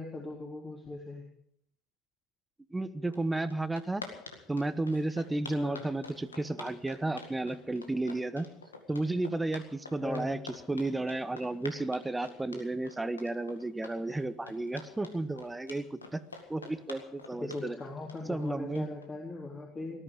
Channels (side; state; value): both; normal; correlation 0.92